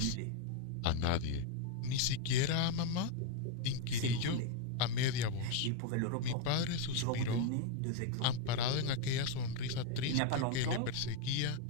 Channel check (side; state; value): both; different; correlation 0.01